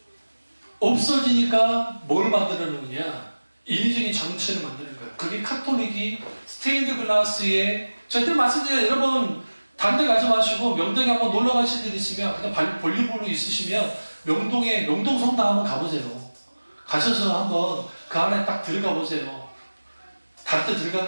없어지니까 뭘 만들어 놓느냐? 인위적인 장치를 만드는 거예요. 그게 카톨릭이 스테인드 글라스에 저희들 말씀드려요. 여러분 다른 데 가지 마시고 명동에 한번 놀러 가실 일 있으면 그냥 볼리브로 있으시면 명동에 명동 성당 한번 가보세요. 가셔서 한번 그 안에 딱 들어가 보세요. 다른 데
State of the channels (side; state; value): both; inverted; correlation -1.00